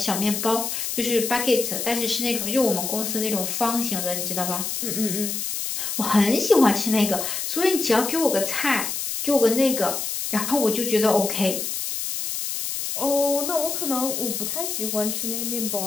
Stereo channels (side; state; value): left; noise; hiss, 3 dB below the sound